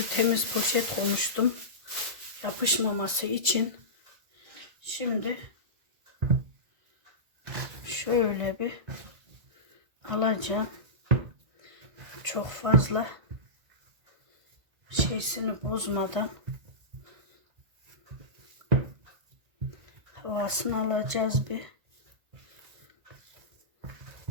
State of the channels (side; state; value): left; late; 1.9 ms